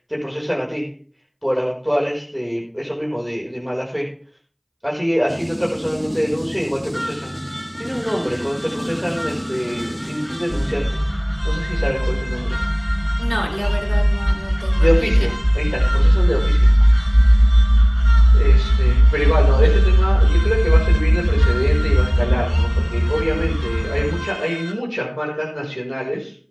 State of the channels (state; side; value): identical; both; correlation 1.00